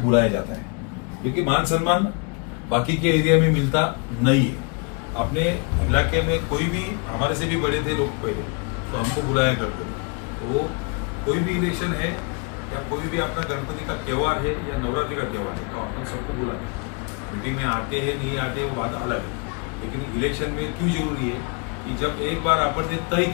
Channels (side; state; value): right; quieter; 33.9 dB